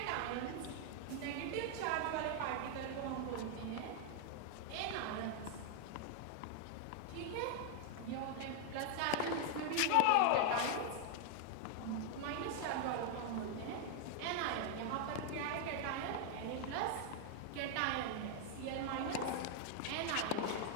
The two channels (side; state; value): both; different; correlation 0.00